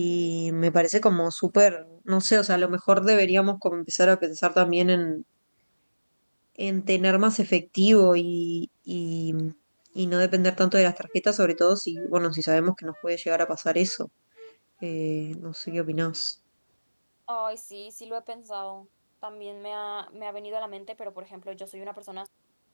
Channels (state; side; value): inverted; both; correlation -1.00